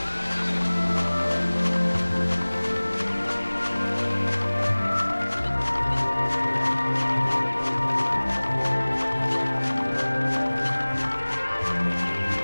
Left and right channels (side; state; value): both; inverted; correlation -1.00